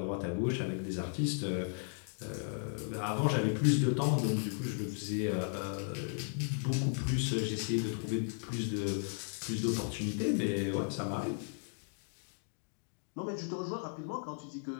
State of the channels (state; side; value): silent; right; 54 dB below the other